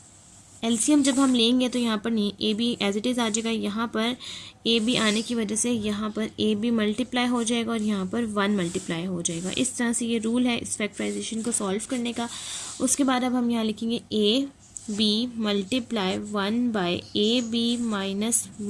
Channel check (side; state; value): both; identical; correlation 1.00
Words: LCM जब हम लेंगे तो यहाँ पर नहीं, A B as it is आ जाएगा, यहाँ पर ए बी आने की वजह से यहाँ पर ए बी मल्टीप्लाई हो जाएगा और यहाँ पर 1 मल्टीप्लाई हो जाएगा। इस तरह से ये रूल है इस फैक्टराइजेशन को सॉल्व करने का। उसके बाद अब हम यहाँ लिखेंगे A B multiply 1/ab minus